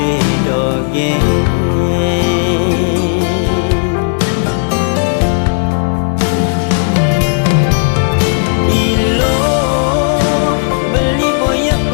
ilo beli boya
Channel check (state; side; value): silent; right; digital silence